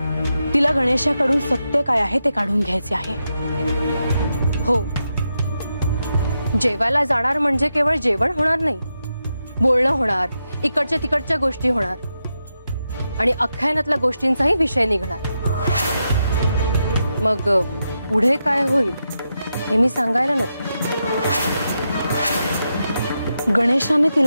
तिला गणेशाकडून सत्य काय आहे ते काढून घ्यायचे आहे. हो, जेवायला जाणार म्हणजे केवळ जेवण होणार नाही, बोलणं होणार, इकडच्या तिकडच्या गोष्टी होणार आणि अख्यानातल्या गोष्टींचाही विषय निघणार. मग पुढे काय होईल हे मी सांगायला नको. गणेशाने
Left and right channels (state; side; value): inverted; both; correlation -0.86